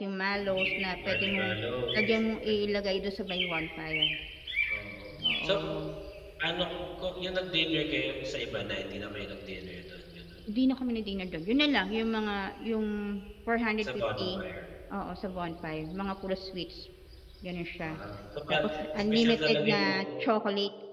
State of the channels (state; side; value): identical; both; correlation 1.00